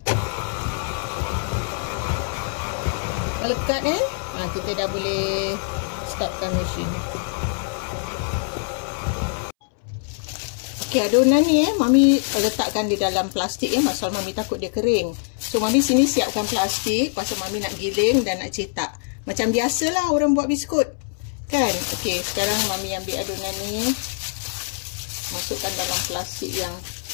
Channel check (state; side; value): silent; right; 63 dB below the other